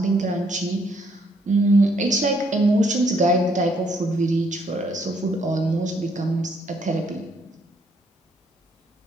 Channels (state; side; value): normal; both; correlation 0.70